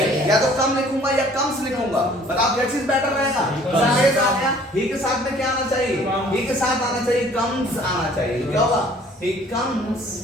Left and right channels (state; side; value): normal; both; correlation 0.54